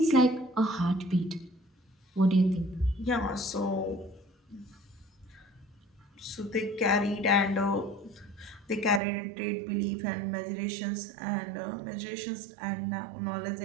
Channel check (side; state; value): left; drops out; at 9.0 s